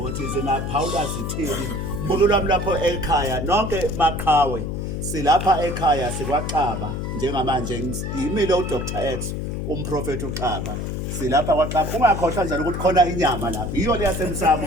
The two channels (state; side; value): noise; left; hum, 4 dB below the sound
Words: zinaphawula zithini mbulo lwami lapho ekhaya nonke maqhawe silapha ekhaya sikwaXaba njengamanje yimile uDr X umprofeti uXaba silapha kwaXaba ungakhohlwa njalo ukuthi khona inyama lapha iyo le